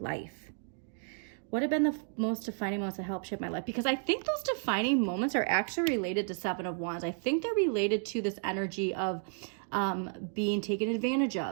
What have been the most defining moments that help shape my life? Because I think those defining moments are actually related to Seven of Wands. I think they're related to this energy of being taken advantage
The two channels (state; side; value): silent; left; 56 dB below the other